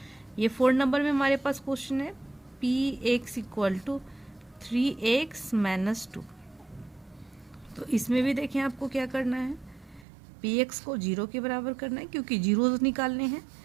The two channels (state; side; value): drops out; left; at 10.1 s